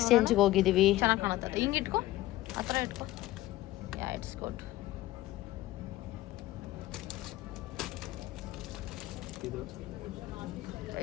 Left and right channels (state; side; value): quieter; right; 16.5 dB